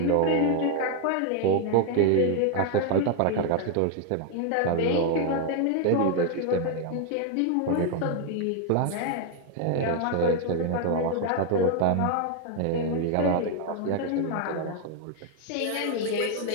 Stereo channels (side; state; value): both; different; correlation 0.00